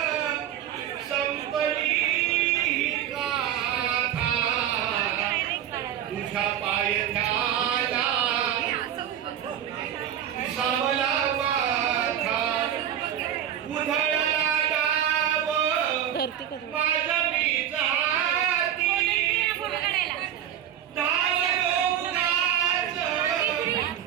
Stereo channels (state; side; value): quieter; left; 10.2 dB